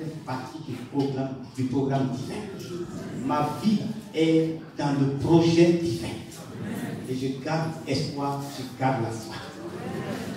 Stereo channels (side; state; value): both; identical; correlation 1.00